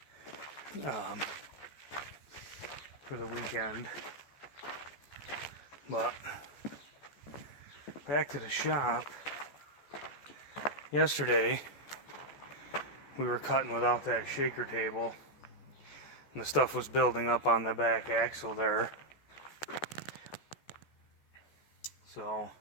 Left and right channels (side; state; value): right; late; 14 ms